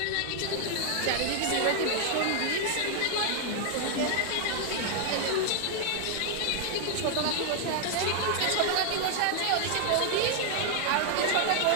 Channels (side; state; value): both; different; correlation 0.00